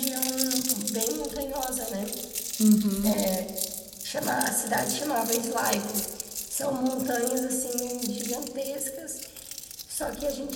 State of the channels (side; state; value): both; identical; correlation 1.00